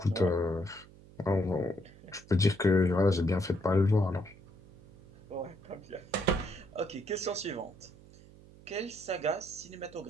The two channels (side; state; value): right; noise; hum, 21 dB below the sound